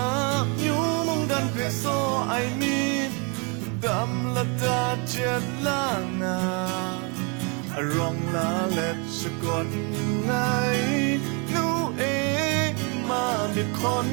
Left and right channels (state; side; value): quieter; left; 34.1 dB